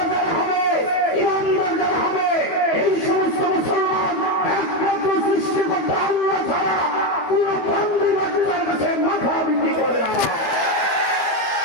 যারা হবে, ইমানদার যারা হবে, এই সমস্ত মুসলমান একমাত্র সৃষ্টিকর্তা আল্লাহ ছাড়া পুরো বান্দিবাদের কাছে মাথা বিক্রি করে না।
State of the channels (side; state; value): right; late; 12 ms